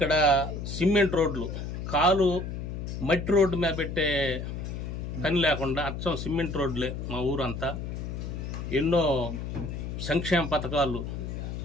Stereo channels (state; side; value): noise; left; hum, 6 dB below the sound